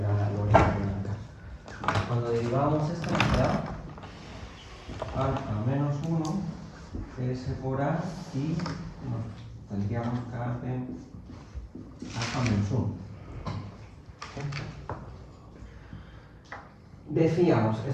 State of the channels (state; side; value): identical; both; correlation 1.00